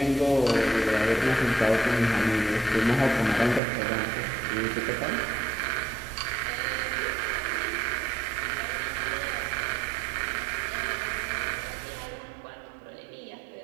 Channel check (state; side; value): drops out; left; at 3.6 s